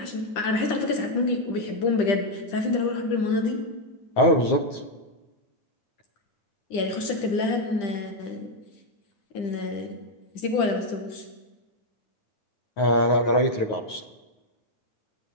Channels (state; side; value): late; right; 10 ms